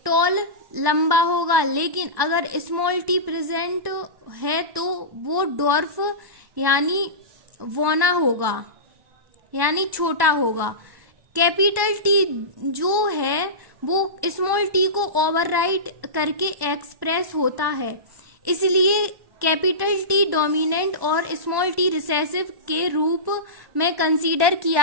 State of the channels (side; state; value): left; late; 1.1 ms